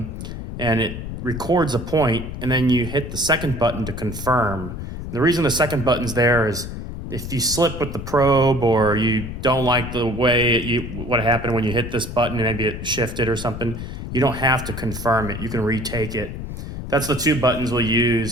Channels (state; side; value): noise; left; rumble, 7 dB below the sound